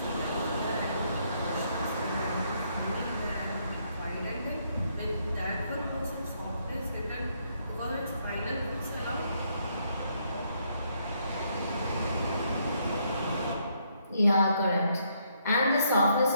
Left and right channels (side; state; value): both; inverted; correlation -0.73